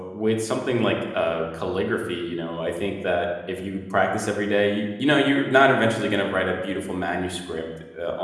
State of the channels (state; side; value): identical; both; correlation 1.00